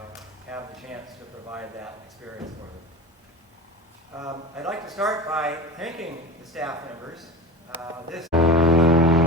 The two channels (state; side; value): normal; both; correlation 0.32